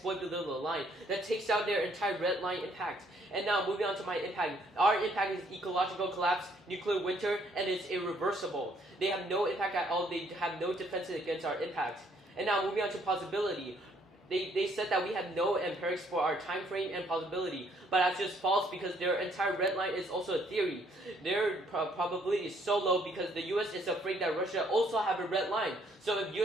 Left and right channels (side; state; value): both; normal; correlation 0.66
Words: below the line. That takes out their entire red line impact. And now moving on to my impact. Our impact is ecological collapse, nuclear winter, and it's irreversible. They have no impact at all. They have no defenses against our impact. And now moving on to possibility. They said that we have no empirics for our time frame and possibility, but that's just false because their entire red line is also a theory. Their probability is so low because the U.S. is afraid that Russia also have a red line. So if